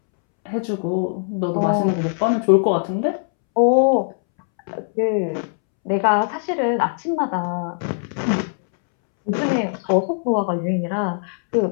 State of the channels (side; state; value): right; silent; 65 dB below the other